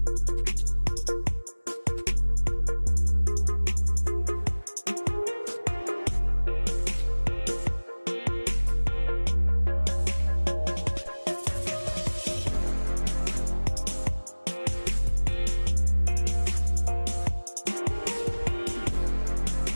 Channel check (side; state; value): both; inverted; correlation -1.00